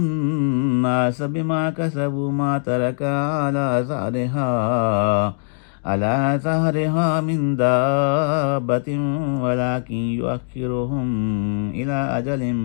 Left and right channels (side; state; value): right; silent; digital silence